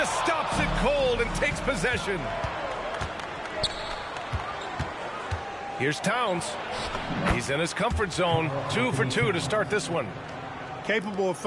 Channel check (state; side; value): identical; both; correlation 1.00